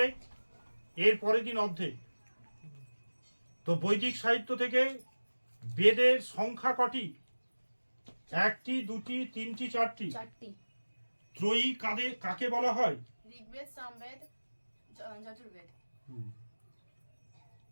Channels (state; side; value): inverted; both; correlation -1.00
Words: এর পরের দিন অর্ধেক। তো বৈদিক সাহিত্য থেকে বেদের সংখ্যা কটি? 1টি, 2টি, 3টি, 4টি? 4টি। ত্রয়ী কাকে বলা হয়? ঋগ্বেদ, সামবেদ, যজুর্বেদ।